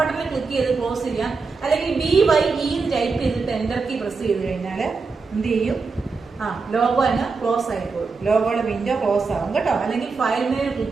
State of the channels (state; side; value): quieter; left; 4.5 dB